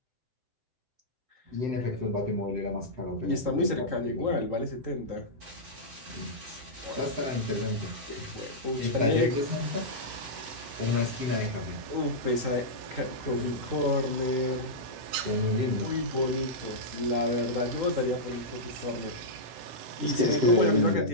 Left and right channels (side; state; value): left; late; 7.8 ms